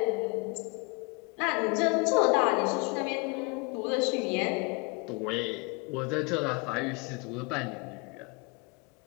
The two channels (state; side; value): quieter; right; 30.7 dB